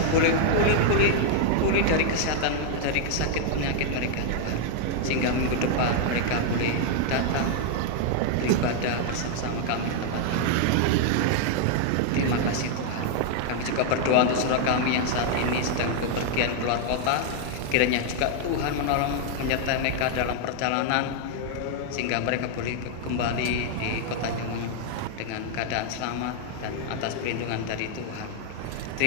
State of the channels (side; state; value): both; different; correlation 0.00